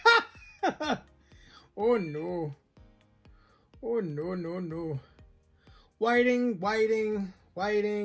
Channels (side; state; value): both; identical; correlation 1.00